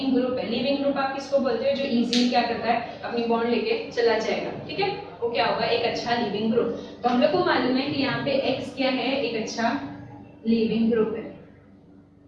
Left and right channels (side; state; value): both; identical; correlation 1.00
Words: ग्रुप है। लीविंग ग्रुप आप किसको बोलते हो, जो इजीली क्या करता है, अपनी बॉन्ड लेके चला जाएगा। ठीक है, वो क्या होगा, एक अच्छा लीविंग ग्रुप। तो हम लोग को मालूम है कि यहाँ पे X क्या है, एक अच्छा लीविंग ग्रुप है।